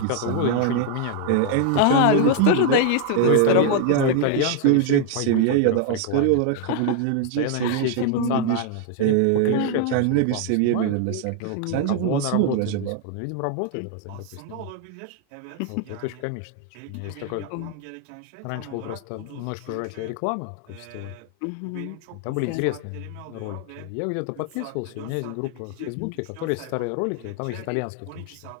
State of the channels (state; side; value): different; both; correlation 0.00